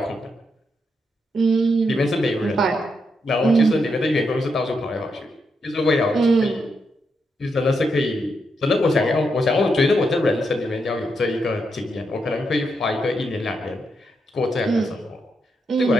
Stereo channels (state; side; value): normal; both; correlation 0.82